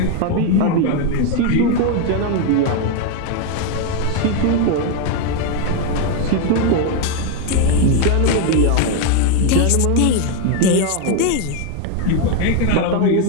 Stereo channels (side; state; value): both; different; correlation 0.01